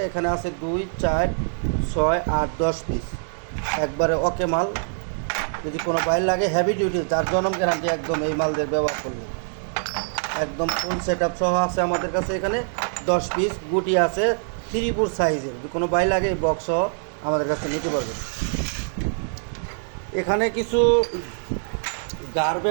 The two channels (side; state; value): left; silent; digital silence